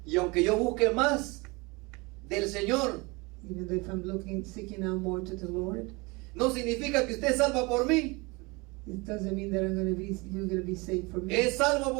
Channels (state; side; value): quieter; left; 26.2 dB